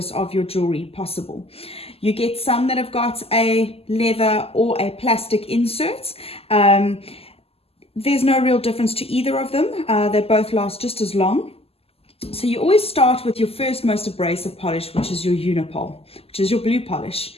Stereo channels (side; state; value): right; late; 0.29 ms